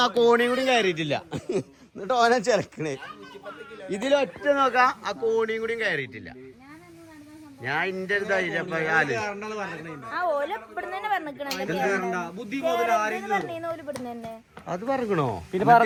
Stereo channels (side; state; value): both; identical; correlation 1.00